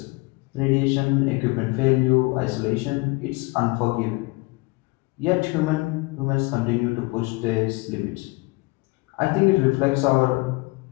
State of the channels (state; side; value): quieter; right; 25.2 dB